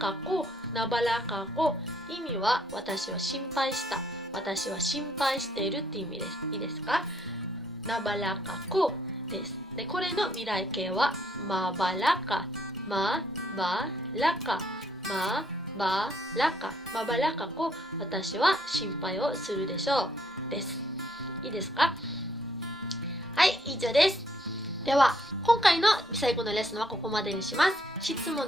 コ、ナバラカコ。意味は私は心配した、私は心配しているって意味です。いいですか？ナバラカコです。で、これの未来形はマバラカ、マバラカ、マバラカ、マバラカコ、私は心配をするでしょうです。いいですか？はい、以上です。では、今回の最後のレッスンはここまでにします。質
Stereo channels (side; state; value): both; normal; correlation 0.69